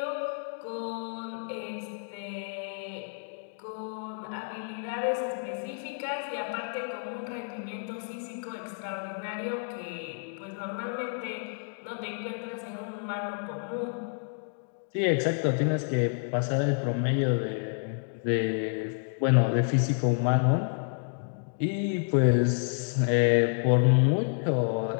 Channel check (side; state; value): right; silent; 58 dB below the other